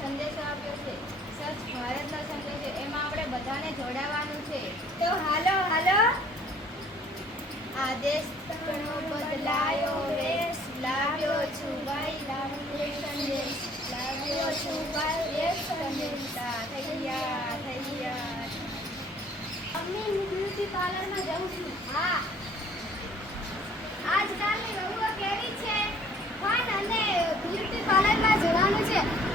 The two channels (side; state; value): both; normal; correlation 0.56